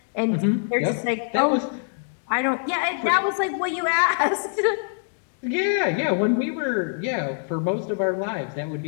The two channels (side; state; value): right; silent; digital silence